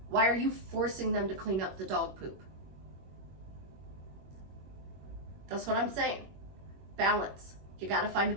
Why are you forcing them to clean up the dog poop? That's what I'm saying. Balance. You got to find a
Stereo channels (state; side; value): late; left; 21 ms